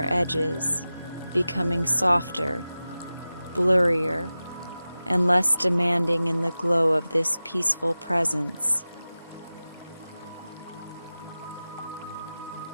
edges, becoming softer, blurrier, and less demanding in the glow of this peaceful presence.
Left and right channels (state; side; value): inverted; both; correlation -0.96